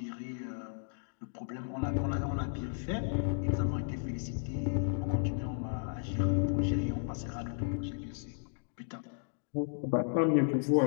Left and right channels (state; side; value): silent; right; digital silence